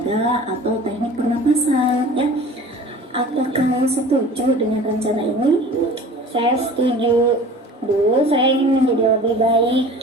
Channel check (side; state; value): both; normal; correlation 0.42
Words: atau teknik pernapasan, ya. Apakah kamu setuju dengan rencana ini? Saya setuju, Bu. Saya ingin menjadi lebih